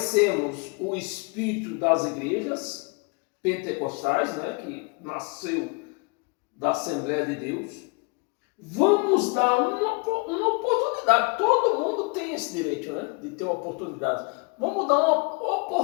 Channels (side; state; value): right; quieter; 31.9 dB